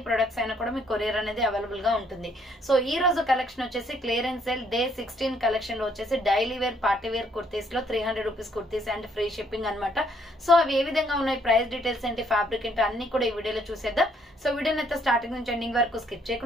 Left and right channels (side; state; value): both; normal; correlation 0.67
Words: ప్రొడక్ట్స్ అయినా కూడా మీకు కొరియర్ అనేది అవైలబుల్ గా ఉంటుంది. సో ఈ రోజు కలెక్షన్ వచ్చేసి క్లియరెన్స్ సేల్ డే 16 కలెక్షన్ లో వచ్చేసి daily wear party wear kurtis లో 300 rupees kurtis and free shipping అనమాట. సో అవి ఏ విధంగా ఉన్నాయి, ప్రైస్ డీటెయిల్స్ ఏంటి, ఫ్యాబ్రిక్ ఏంటి అన్ని కూడా ఈ వీడియోలో చూసేద్దాం. సో వీడియోని అయితే స్టార్టింగ్ నుంచి ఎండింగ్ వరకు స్కిప్